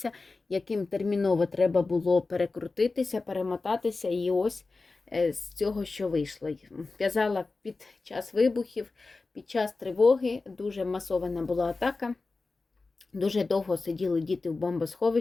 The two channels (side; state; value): right; quieter; 3.7 dB